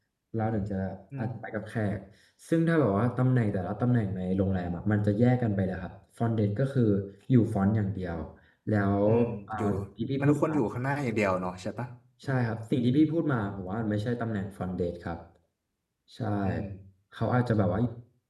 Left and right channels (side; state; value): both; identical; correlation 1.00